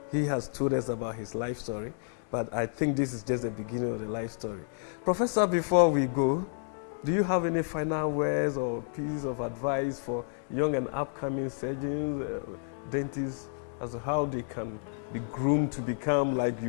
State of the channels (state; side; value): silent; right; digital silence